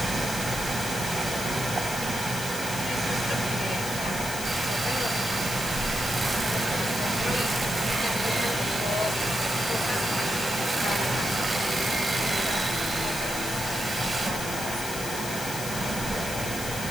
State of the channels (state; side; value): noise; left; hiss, 7 dB below the sound